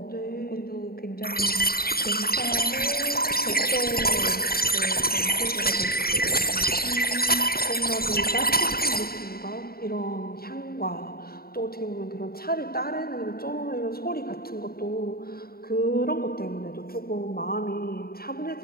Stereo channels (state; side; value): late; right; 0.44 ms